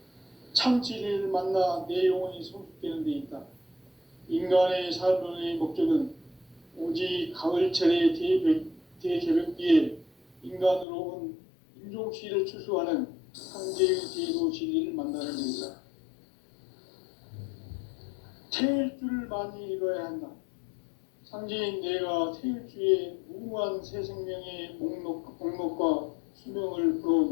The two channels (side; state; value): right; drops out; at 10.9 s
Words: 참 진리를 만나 내 영혼이 성숙되는 데 있다. 인간의 삶의 목적은 오직 가을철의 대개벽기에 인간으로 온 인종시를 추수하는 상제의 대도 진리를 만나는 것이다. 태일주를 많이 읽어야 한다. 상제인 내가 태일주의 무궁한 새 생명의 목록과 수명을